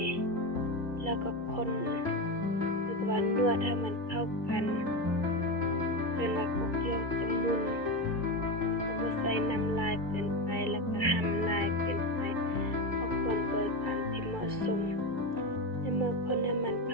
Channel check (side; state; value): right; late; 2.3 ms